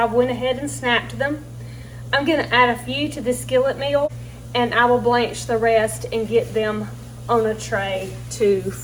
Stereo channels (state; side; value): identical; both; correlation 1.00